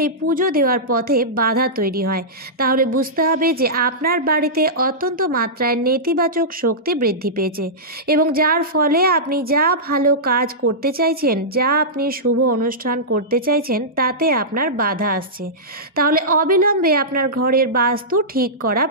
পুজো দেওয়ার পথে বাধা তৈরি হয়, তাহলে বুঝতে হবে যে আপনার বাড়িতে অত্যন্ত মাত্রায় নেতিবাচক শক্তি বৃদ্ধি পেয়েছে এবং যার ফলে আপনি যা ভালো কাজ করতে চাইছেন, যা আপনি শুভ অনুষ্ঠান করতে চাইছেন তাতে আপনার বাধা আসছে। তাহলে অবিলম্বে আপনার ঘরের বাস্তু ঠিক করা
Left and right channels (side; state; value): both; normal; correlation -0.14